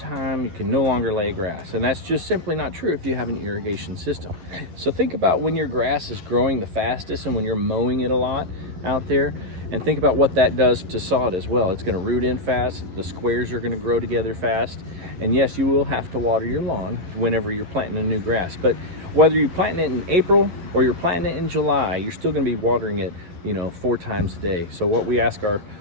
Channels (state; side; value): late; left; 11 ms